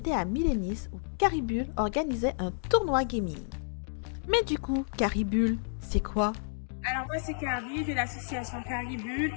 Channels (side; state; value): right; silent; digital silence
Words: à Milenis où Caribule organisait un tournoi gaming. Mais du coup, Caribule, c'est quoi? Alors moi c'est Carrie de l'association Caribule.